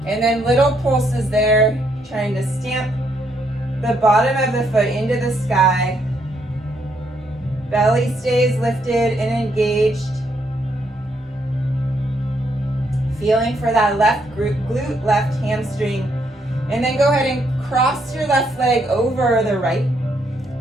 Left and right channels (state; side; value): normal; both; correlation 0.74